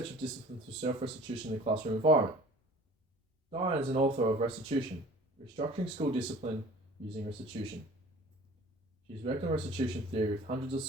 of discipline through self-restitution in the classroom environment. Diane is an author of Restitution, Restructuring School Discipline Using Restitution. She has worked on restitution theory with hundreds of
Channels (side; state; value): both; normal; correlation 0.46